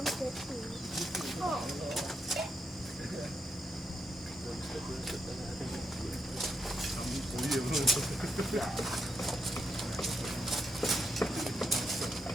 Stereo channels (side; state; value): both; normal; correlation 0.81